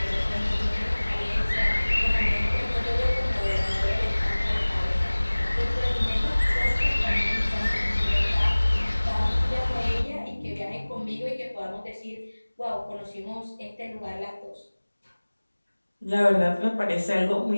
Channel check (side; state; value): both; inverted; correlation -1.00